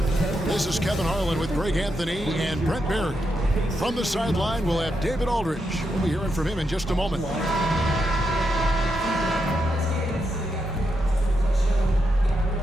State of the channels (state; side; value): normal; both; correlation 0.83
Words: This is Kevin Harlan with Greg Anthony and Brent Barry. From the sideline, we'll have David Aldridge. We'll be hearing from him in just a moment. Look